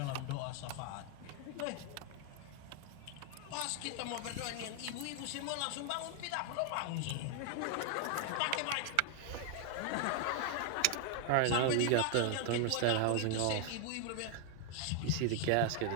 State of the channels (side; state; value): both; different; correlation 0.00